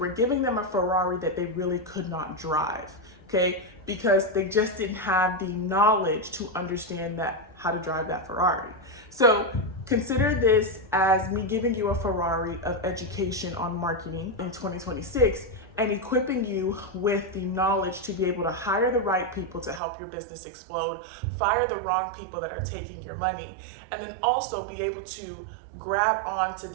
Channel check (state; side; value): drops out; left; at 19.8 s